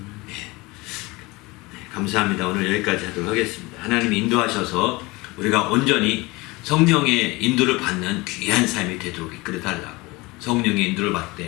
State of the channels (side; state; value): right; quieter; 23.2 dB